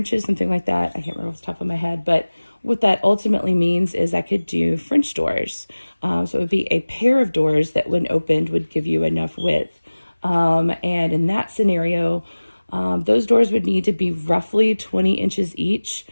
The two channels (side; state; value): both; inverted; correlation -1.00